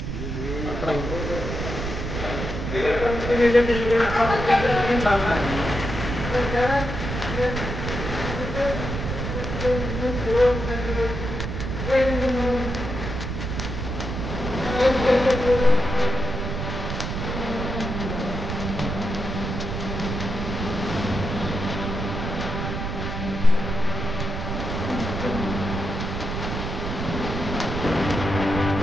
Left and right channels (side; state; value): right; noise; rumble, 4 dB below the sound